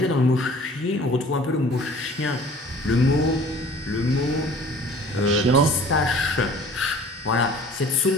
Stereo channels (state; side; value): normal; both; correlation 0.48